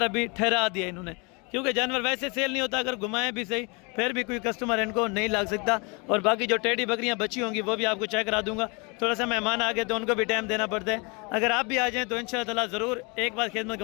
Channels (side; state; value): right; quieter; 30.4 dB